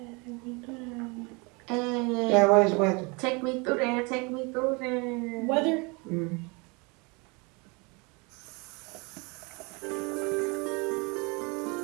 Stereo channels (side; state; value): left; quieter; 29.1 dB